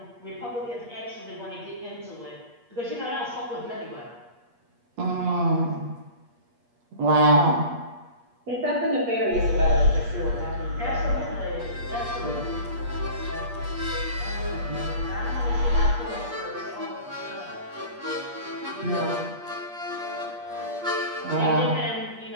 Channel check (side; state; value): left; late; 8.4 ms